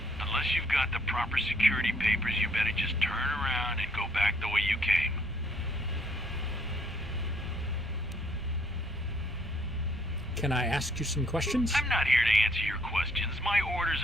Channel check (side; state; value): both; normal; correlation 0.65